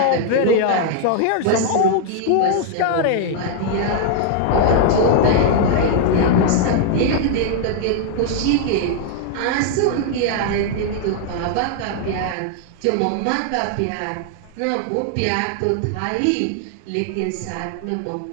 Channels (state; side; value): different; both; correlation 0.00